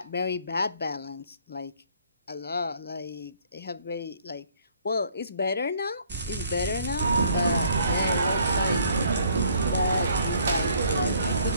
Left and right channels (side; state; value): both; inverted; correlation -0.62